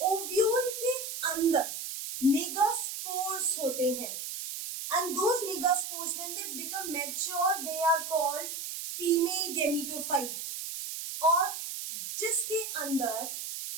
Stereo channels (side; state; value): right; noise; hiss, 6 dB below the sound